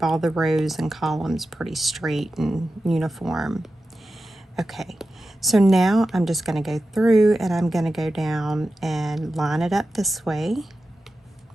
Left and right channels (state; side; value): normal; both; correlation 0.92